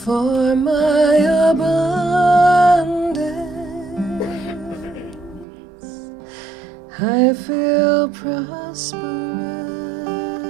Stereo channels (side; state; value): left; drops out; at 5.5 s